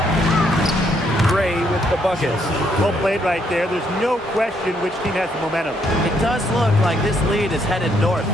Gray with the bucket. Well played right there. There's no question which team has the momentum. It does look like this lead is headed north.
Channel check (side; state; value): both; normal; correlation 0.72